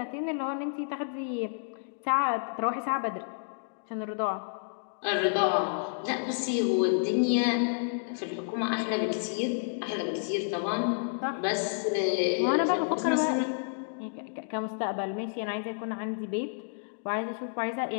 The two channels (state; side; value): silent; right; digital silence